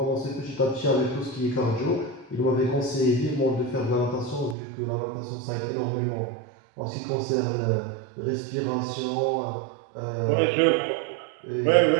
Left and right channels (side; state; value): left; drops out; at 4.5 s